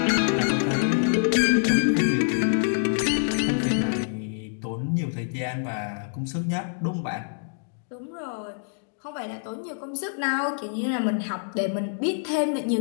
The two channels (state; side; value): silent; right; digital silence